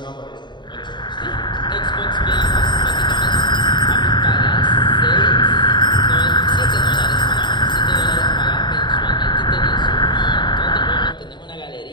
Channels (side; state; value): right; late; 0.22 ms